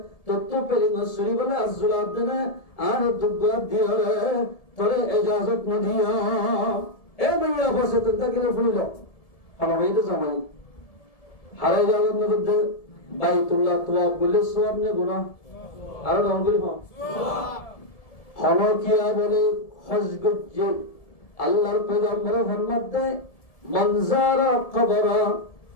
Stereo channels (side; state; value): right; late; 1.7 ms